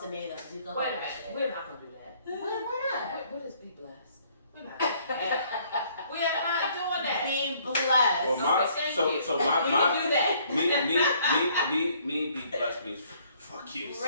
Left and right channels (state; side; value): inverted; both; correlation -0.63